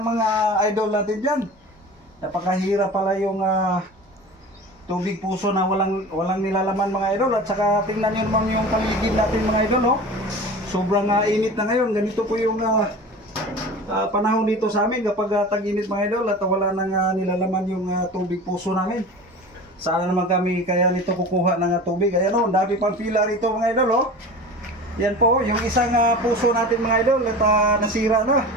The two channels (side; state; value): both; normal; correlation 0.36